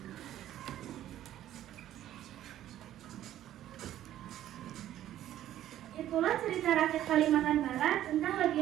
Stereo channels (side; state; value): left; quieter; 12.5 dB